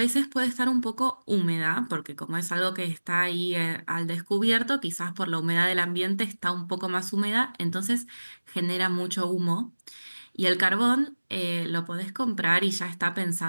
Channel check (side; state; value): both; inverted; correlation -1.00